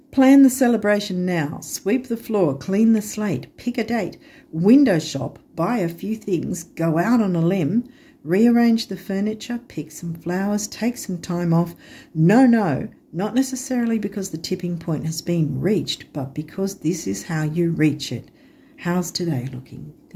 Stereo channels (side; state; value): both; identical; correlation 1.00